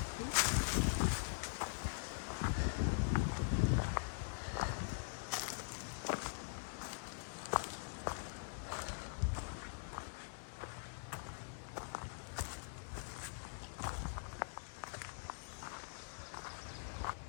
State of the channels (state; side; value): silent; right; digital silence